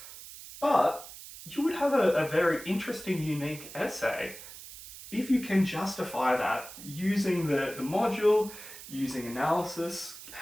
but you would have a very interesting, unique essay if you can justify that using the module, using analysis,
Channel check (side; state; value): right; noise; hiss, 14 dB below the sound